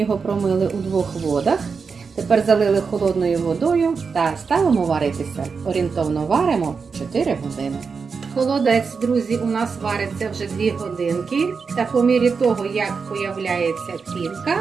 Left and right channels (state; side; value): quieter; left; 5.3 dB